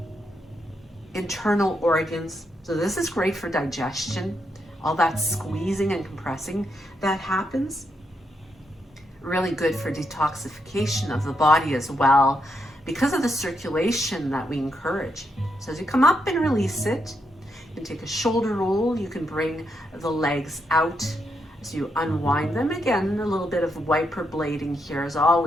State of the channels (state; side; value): normal; both; correlation 0.80